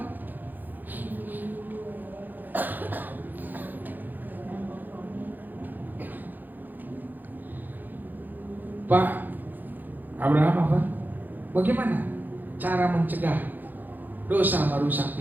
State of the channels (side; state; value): left; late; 0.086 ms